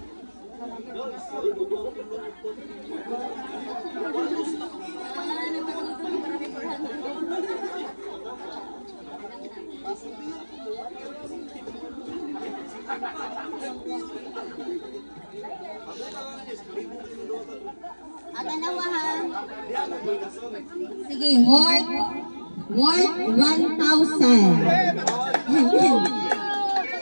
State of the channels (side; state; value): both; inverted; correlation -1.00